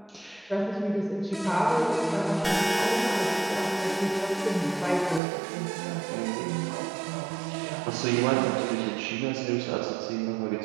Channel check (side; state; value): left; drops out; at 5.2 s